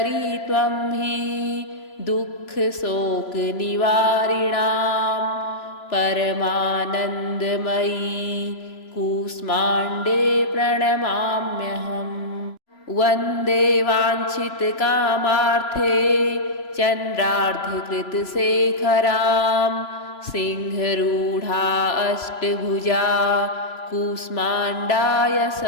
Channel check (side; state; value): right; late; 3.0 ms